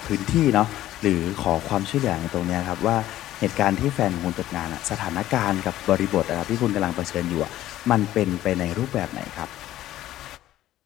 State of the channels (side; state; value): right; quieter; 14.1 dB